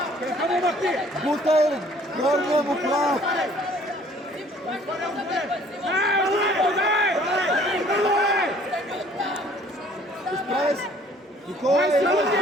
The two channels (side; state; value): both; normal; correlation 0.56